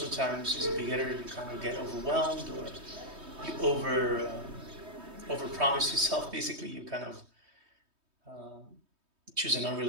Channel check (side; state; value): left; late; 3.2 ms